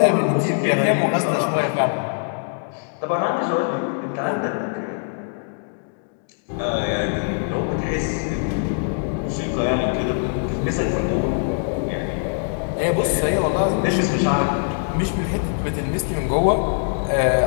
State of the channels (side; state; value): right; silent; digital silence